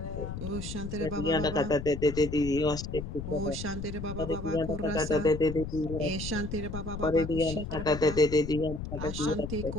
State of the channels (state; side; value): noise; left; rumble, 7 dB below the sound